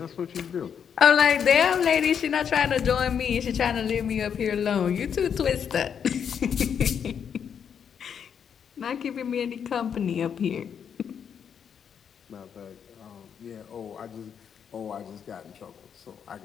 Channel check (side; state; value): right; quieter; 7.7 dB